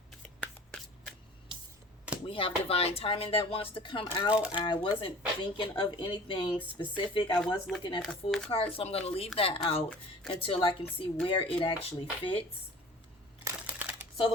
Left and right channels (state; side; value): normal; both; correlation 0.44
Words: We have divine timing that wants to come out. I wasn't thinking of anything specific. I was looking at the Fool card, so I'm going to leave that out until I can see where it actually fits. So